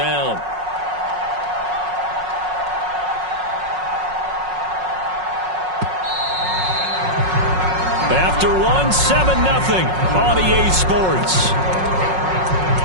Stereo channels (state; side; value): late; left; 5.5 ms